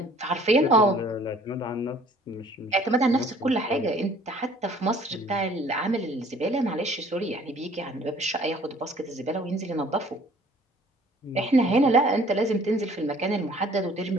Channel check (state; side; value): normal; both; correlation 0.55